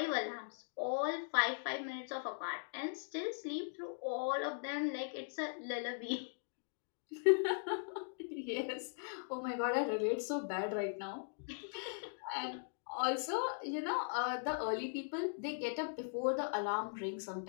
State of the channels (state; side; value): silent; right; digital silence